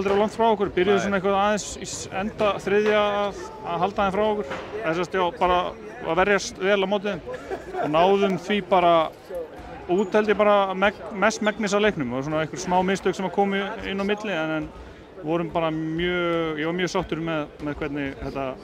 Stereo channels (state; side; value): identical; both; correlation 1.00